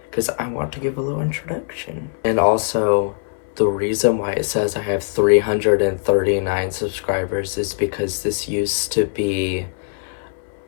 because I want to give a little introduction. And also, the reason why it says I have 339 subscribers is because this used to be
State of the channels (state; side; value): silent; right; 61 dB below the other